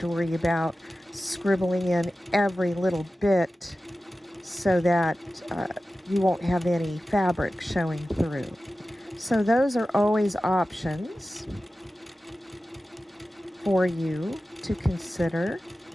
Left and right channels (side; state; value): both; normal; correlation 0.95